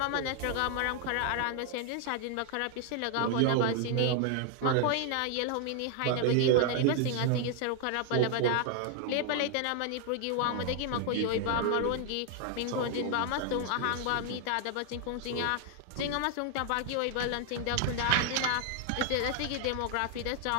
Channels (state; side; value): different; both; correlation 0.00